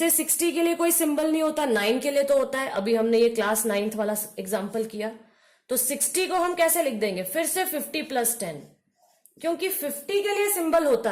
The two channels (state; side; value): identical; both; correlation 1.00